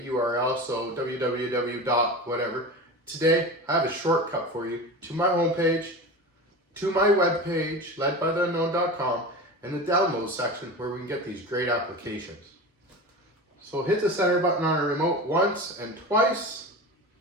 URL, so www. whatever. Today, I have a shortcut for you to my homepage, to my webpage, ledbytheunknown.com, and the download section where we can get these great applications. So hit the center button on our remote once and twice,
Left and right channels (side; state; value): both; normal; correlation 0.29